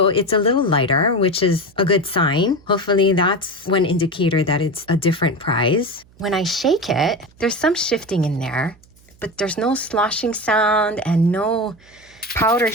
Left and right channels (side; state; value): right; noise; hum, 29 dB below the sound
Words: it's a little lighter, which is a good sign. Hopefully that's one indicator that it's a different price. When I shake it, there's some shifting in there, but there's no sloshing sound and no powder